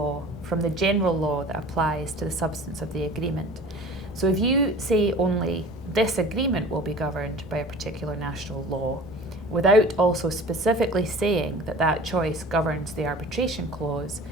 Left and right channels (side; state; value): both; normal; correlation 0.42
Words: from the general law that applies to the substance of the agreement. So if you say only this agreement will be governed by a particular national law, without also specifically saying that that choice governs the arbitration clause,